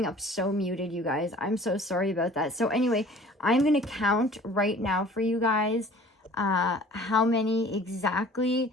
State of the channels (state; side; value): normal; both; correlation 0.48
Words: up so muted, you guys. I'm so sorry about that. So anyway, I'm going to count right now for you guys how many exactly